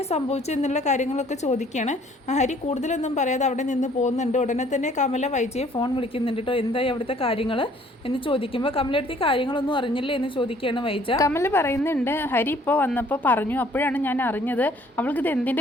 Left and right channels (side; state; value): both; normal; correlation 0.58